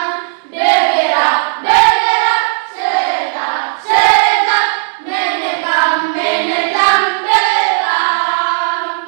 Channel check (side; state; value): left; silent; 66 dB below the other